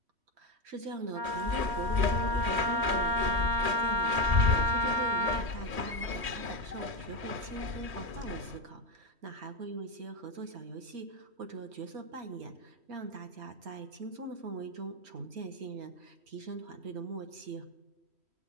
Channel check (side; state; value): left; late; 3.1 ms